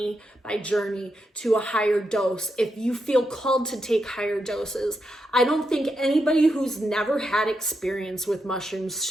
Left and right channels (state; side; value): normal; both; correlation 0.84